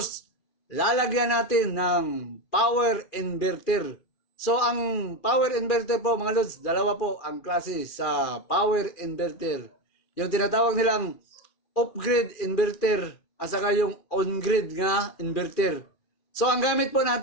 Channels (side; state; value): right; late; 2.4 ms